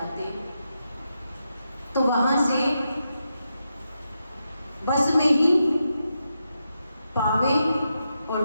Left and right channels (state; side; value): inverted; both; correlation -0.86